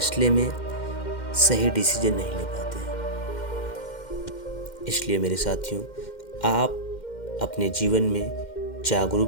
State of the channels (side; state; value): right; late; 2.1 ms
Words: में सही डिसीजन नहीं ले पाते हैं। इसलिए मेरे साथियों, आप अपने जीवन में